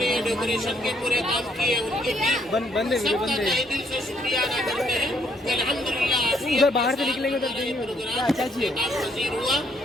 ڈیکوریشن کے پورے کام کیے، ان کی ٹیم سب کا تہہ دل سے شکریہ ادا کرتے ہیں کہ الحمدللہ باہر سے نکلیں گے پروگرام پذیر ہوا۔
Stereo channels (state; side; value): normal; both; correlation 0.70